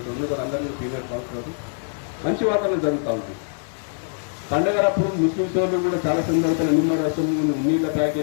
అందరూ సీనియర్ కౌన్సిలర్ మంచి వాతావరణం జరుగుతూ ఉంటుంది. పండగలప్పుడు ముస్లిం సోదరులు కూడా చాలా సందర్భాలు నిమ్మరసం, నీళ్ళ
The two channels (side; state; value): right; silent; 63 dB below the other